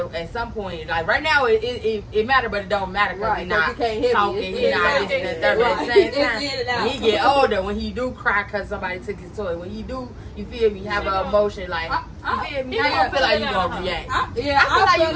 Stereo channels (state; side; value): identical; both; correlation 1.00